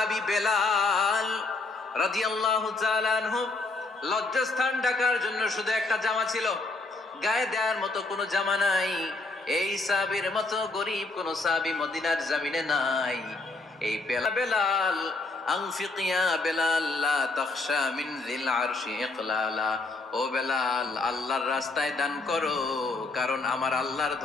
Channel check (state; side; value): quieter; right; 3.4 dB